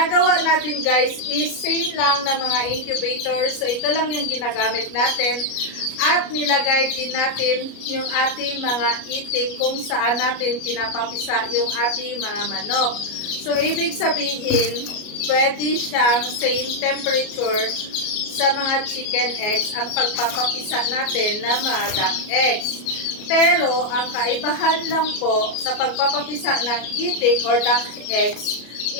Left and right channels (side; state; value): right; late; 33 ms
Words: natin guys is same lang na mga incubator. So, ito lang yung ginagamit natin. At nilagay din natin yung ating mga itik kung saan natin pinapapisa yung ating mga manok. So, ibig sabihin, pwede siyang same temperature sa mga chicken eggs ang pagpapapisa natin na mga duck eggs. Pero, ang kaibahan lang po sa pagpapapisa ng itik or duck eggs